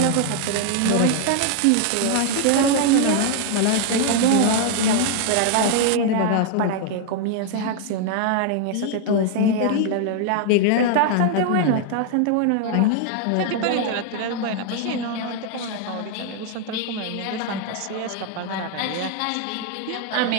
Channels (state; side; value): different; both; correlation 0.00